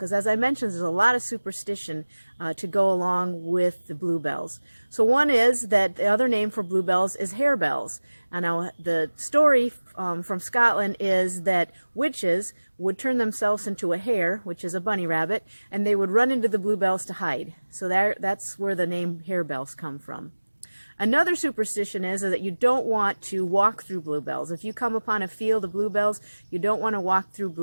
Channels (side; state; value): both; inverted; correlation -1.00